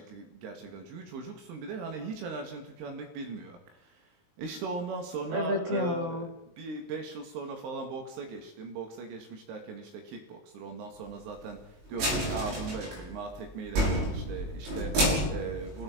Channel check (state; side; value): late; left; 19 ms